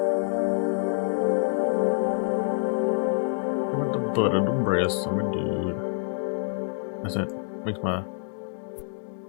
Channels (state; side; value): silent; right; digital silence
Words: Butt of the breast, I'm a dude. That's it. Makes my